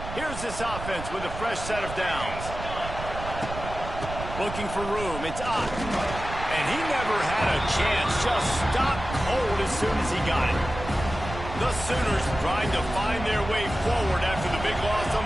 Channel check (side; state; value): right; noise; rumble, 9 dB below the sound